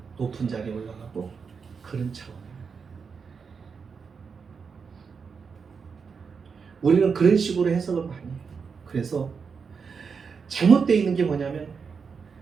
높은 자리에 올라가고 그런 차원이에요. 우리는 그런 식으로 해석을 많이 해요. 그래서 잘못되어 있는 게 뭐냐면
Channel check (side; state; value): left; quieter; 5.7 dB